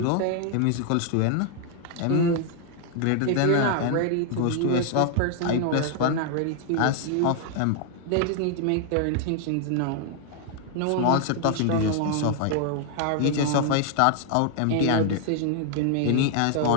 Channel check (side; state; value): both; different; correlation 0.00